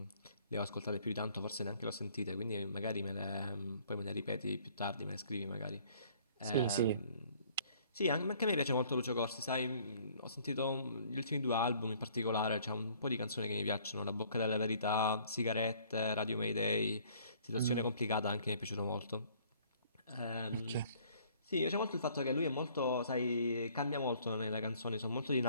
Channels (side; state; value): both; inverted; correlation -0.58